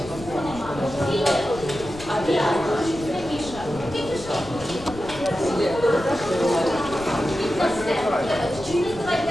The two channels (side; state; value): left; noise; rumble, 15 dB below the sound